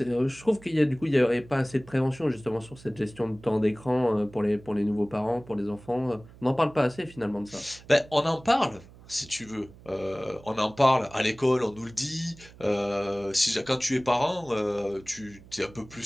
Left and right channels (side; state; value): right; noise; hum, 21 dB below the sound